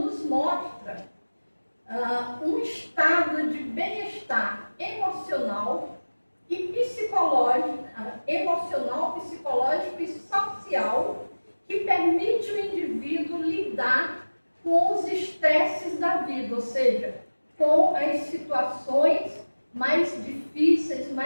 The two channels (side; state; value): both; inverted; correlation -1.00